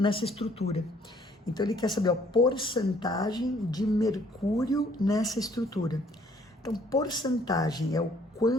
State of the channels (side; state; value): both; normal; correlation 0.62